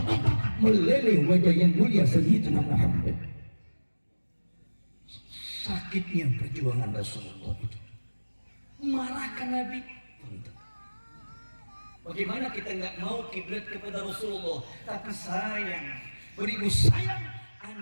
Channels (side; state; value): both; inverted; correlation -1.00